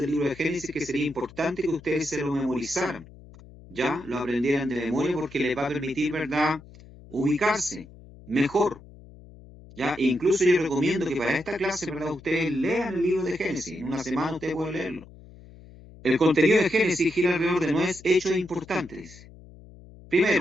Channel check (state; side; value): noise; left; hum, 20 dB below the sound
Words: libro de Génesis que sería importante que ustedes se lo memorizaran, ¿ya? Lo aprendieran de memoria porque les va a permitir, ¿verdad?, ubicarse mejor, ¿ya? E incluso yo recomiendo que para esta clase, ¿verdad?, ustedes lean el libro de Génesis. En una semana ustedes pueden leerlo. El contenido de Génesis gira alrededor de 9 hechos importantes.